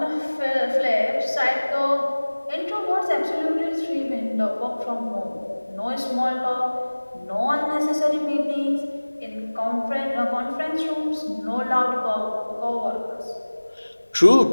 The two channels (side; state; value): both; inverted; correlation -1.00